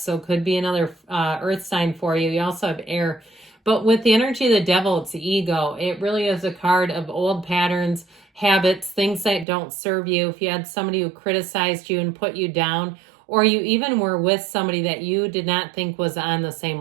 could be another Earth sign for you. You also have air. But with the energy of the devil, it's the ego. It really is a card of old patterns, habits, things that don't serve you. If you had somebody who criticized you and put you down, or you even were with somebody that you did not think was on the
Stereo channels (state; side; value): drops out; left; at 9.5 s